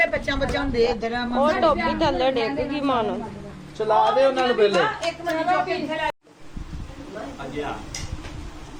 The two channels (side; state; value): both; identical; correlation 1.00